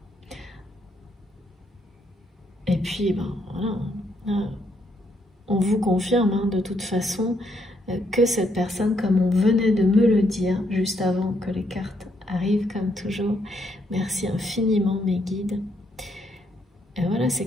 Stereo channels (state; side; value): normal; both; correlation 0.74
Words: Et puis, ben, voilà, on vous confirme de toute façon que cette personne, comme on venait de me le dire juste avant que les cartes arrivent, comme toujours, merci infiniment mes guides. Et voilà, c'est